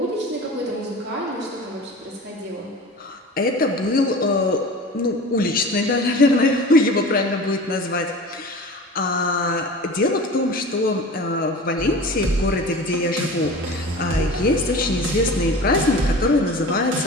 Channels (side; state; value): both; normal; correlation 0.36